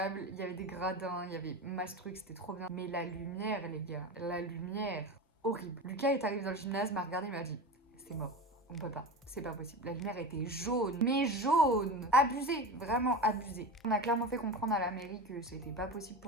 il y avait des gradins, il y avait masse trucs, c'était trop bien. Mais la lumière, les gars, la lumière, horrible. Lucas est arrivé dans le gymnase, m'a regardé, il m'a dit c'est mort, on peut pas, c'est pas possible. La lumière était jaune, mais jaune, abusé, vraiment abusé. On a clairement fait comprendre à la mairie que c'était pas possible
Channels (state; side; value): normal; both; correlation 0.27